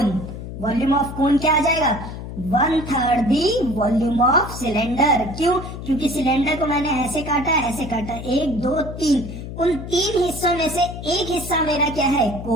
Volume of कोन क्या आ जाएगा? One third the volume of cylinder. क्यों? क्योंकि सिलेंडर को मैंने ऐसे काटा, ऐसे काटा, एक दो तीन, उन तीन हिस्सों में से एक हिस्सा मेरा क्या है?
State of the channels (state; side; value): noise; left; hum, 9 dB below the sound